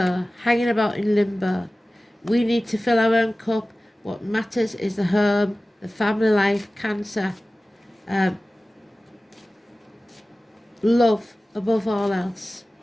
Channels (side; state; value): both; normal; correlation 0.96